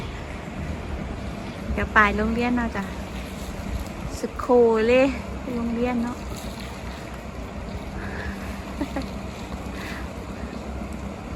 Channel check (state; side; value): identical; both; correlation 1.00